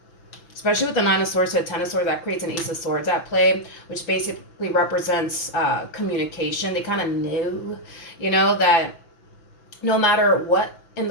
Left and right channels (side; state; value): right; late; 6.0 ms